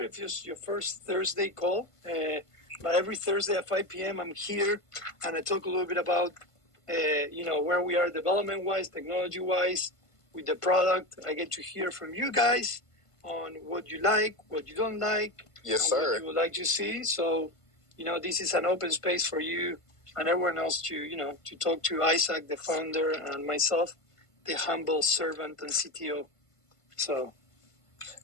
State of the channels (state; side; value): late; right; 1.5 ms